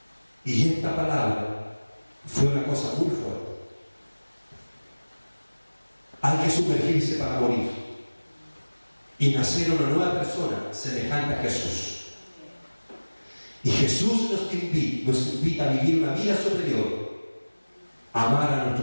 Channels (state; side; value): inverted; both; correlation -1.00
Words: Y esta palabra fue una cosa muy fuerte. Hay que sumergirse para morir y nacer una nueva persona semejante a Jesús. Y Jesús nos invita a vivir una vida superior, amar a